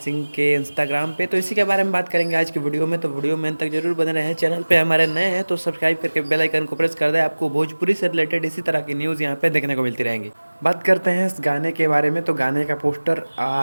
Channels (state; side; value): inverted; both; correlation -1.00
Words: के इंस्टाग्राम पे। तो इसी के बारे में बात करेंगे आज की वीडियो में। तो वीडियो में अंत तक जरूर बने रहें। चैनल पे हमारे नए हैं तो सब्सक्राइब करके बेल आइकन को प्रेस कर दें। आपको भोजपुरी से रिलेटेड इसी तरह की न्यूज़ यहाँ पे देखने को मिलती रहेंगी। बात करते हैं इस गाने के बारे में। तो गाने का पोस्टर